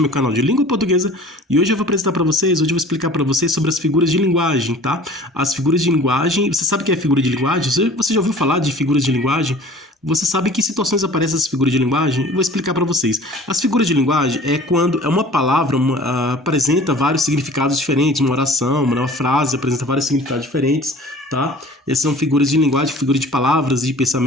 meu canal de língua portuguesa e hoje eu vou apresentar para vocês, hoje eu vou explicar para vocês sobre as figuras de linguagem, tá? As figuras de linguagem, você sabe o que é figura de linguagem? Você já ouviu falar de figuras de linguagem? Você sabe em que situações aparecem essas figuras de linguagem? Eu vou explicar para vocês. As figuras de linguagem é quando uma palavra apresenta vários significados diferentes, uma oração, uma frase apresenta vários significados diferentes, tá? Essas são figuras de linguagem, figuras de palavras e de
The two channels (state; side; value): normal; both; correlation 0.46